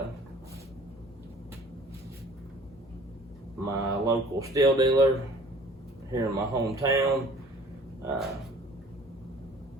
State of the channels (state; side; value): normal; both; correlation 0.51